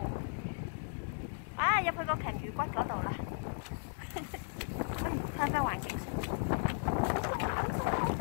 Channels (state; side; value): silent; right; digital silence